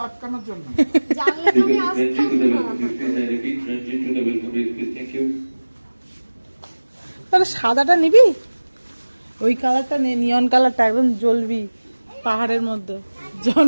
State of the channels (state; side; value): inverted; both; correlation -1.00